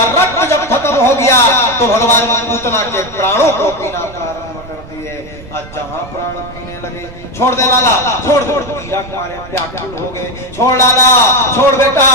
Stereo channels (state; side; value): noise; right; rumble, 18 dB below the sound